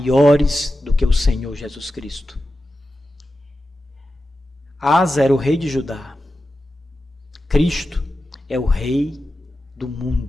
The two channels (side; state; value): both; normal; correlation 0.92